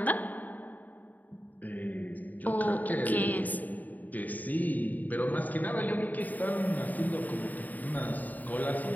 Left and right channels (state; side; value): late; right; 0.081 ms